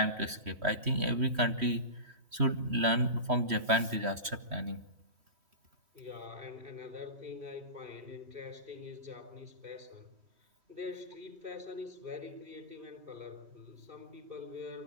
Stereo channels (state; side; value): late; left; 3.1 ms